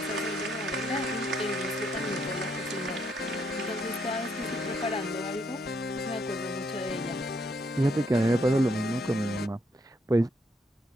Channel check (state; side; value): normal; both; correlation 0.73